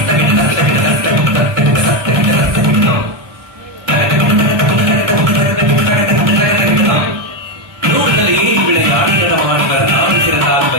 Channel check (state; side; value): late; left; 1.4 ms